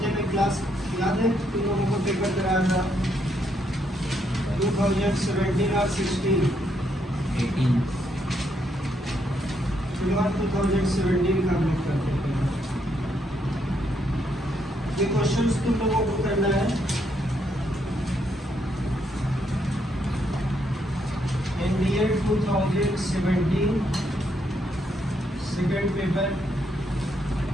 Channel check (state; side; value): normal; both; correlation 0.75